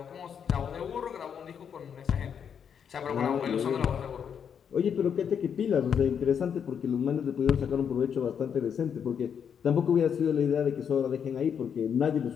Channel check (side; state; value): right; quieter; 7.6 dB